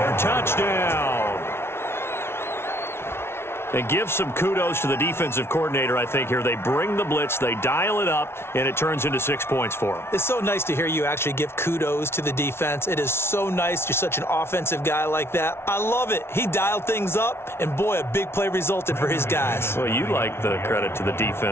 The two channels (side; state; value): right; late; 0.12 ms